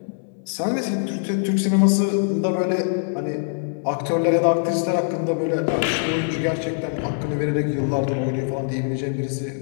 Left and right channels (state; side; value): silent; right; digital silence